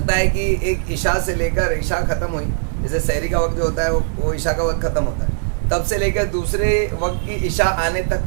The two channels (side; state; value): left; silent; 63 dB below the other